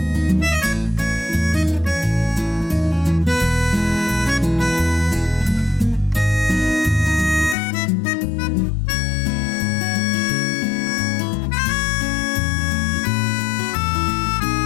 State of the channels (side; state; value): right; drops out; at 7.6 s